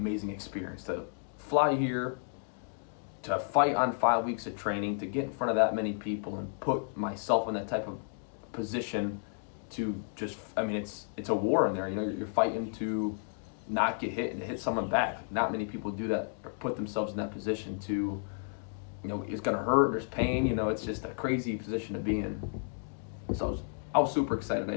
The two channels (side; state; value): right; silent; digital silence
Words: experience to fly here, to fight on 5 weeks of training, to get in front of that many people and put myself in that type of position to just, it's a war in there. You're fighting to not get hit and to hit someone back. Not many people do that or put themselves in that position to, it's going to hurt, there's pain, it's just a crazy position to be in. So I was super excited I